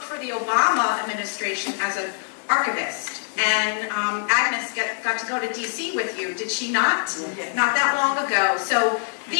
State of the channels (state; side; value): silent; right; digital silence